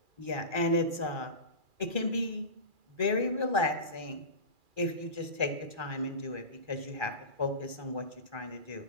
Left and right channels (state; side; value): late; left; 2.4 ms